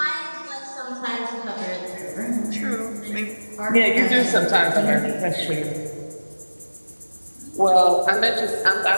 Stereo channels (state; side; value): inverted; both; correlation -1.00